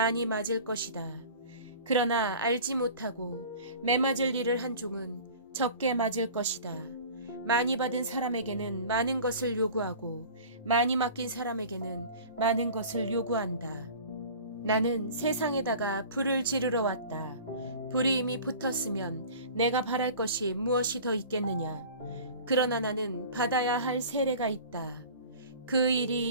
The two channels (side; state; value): both; inverted; correlation -0.42